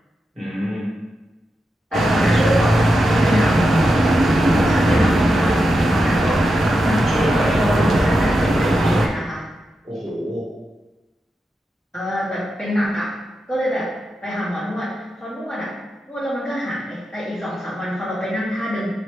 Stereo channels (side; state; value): both; normal; correlation 0.88